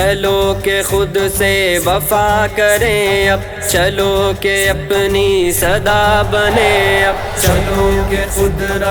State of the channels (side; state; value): both; identical; correlation 1.00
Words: کہ خود سے وفا کریں اب، چلو کہ اپنی صدا بنے اب، چلو کہ خود